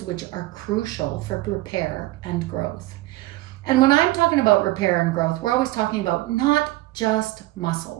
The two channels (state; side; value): quieter; left; 18.2 dB